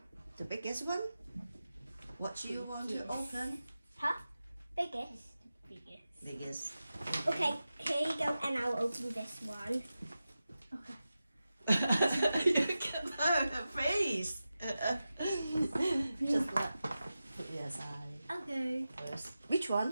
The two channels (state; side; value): inverted; both; correlation -0.93